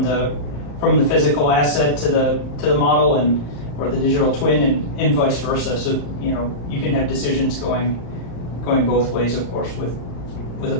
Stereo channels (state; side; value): late; right; 35 ms